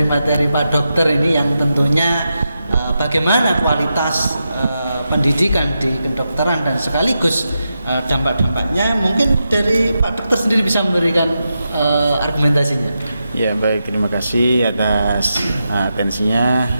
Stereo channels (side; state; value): both; inverted; correlation -0.88